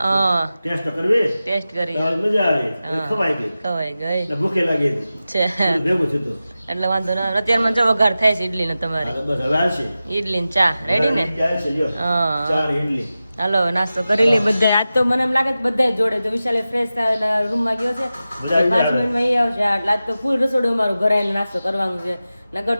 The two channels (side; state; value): both; inverted; correlation -0.94